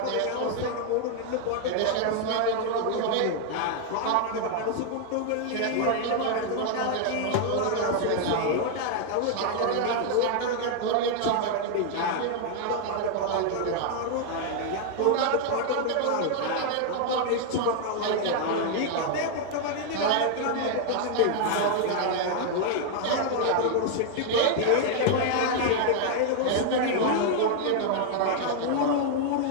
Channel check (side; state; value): both; different; correlation 0.00